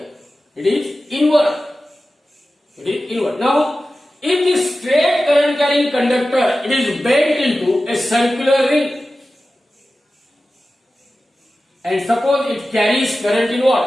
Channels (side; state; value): both; normal; correlation 0.94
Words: it is inward. It is inward. Now, if the straight current carrying conductor it is bent into a circular ring, and suppose it carries current in